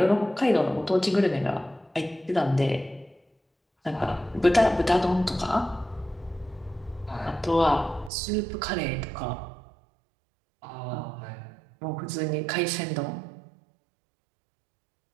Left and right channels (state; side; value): drops out; left; at 8.1 s